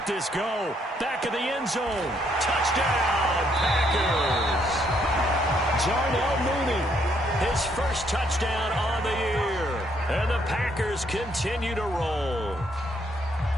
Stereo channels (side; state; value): both; normal; correlation 0.71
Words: this go. Back of the end zone. Touchdown, Packers. Darnell Mooney, his first touchdown on the year. And the Packers continue to roll.